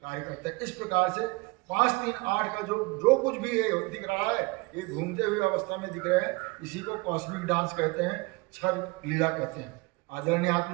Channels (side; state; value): left; quieter; 25.5 dB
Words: करता है। इस प्रकार से 5, 3, 8 का जो कुछ भी ये दिख रहा है ये घूमते हुए अवस्था में दिख रहा है, इसी को कॉस्मिक डांस कहते हैं, क्षर लीला कहते हैं। आदरणीय